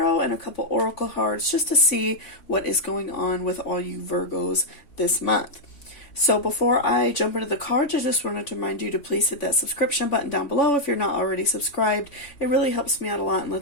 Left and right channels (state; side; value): late; right; 3.5 ms